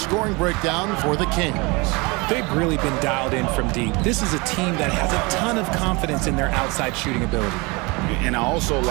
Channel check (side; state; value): left; quieter; 26.6 dB